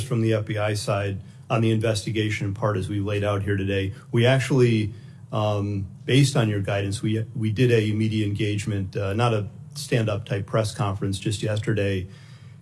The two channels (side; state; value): both; identical; correlation 1.00